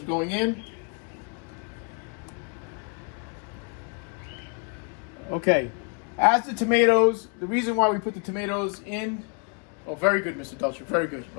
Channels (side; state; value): right; quieter; 38.0 dB